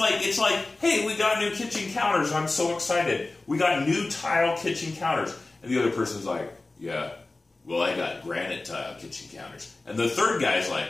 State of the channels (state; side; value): quieter; right; 3.2 dB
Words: hey, we got new kitchen counters. I'm so excited. We got new tile kitchen counters, and the other person's like, yeah, well, I got granite tile kitchen counters, and the third guy's like,